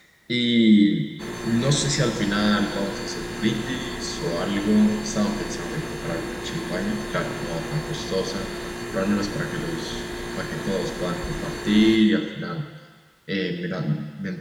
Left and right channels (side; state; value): both; identical; correlation 1.00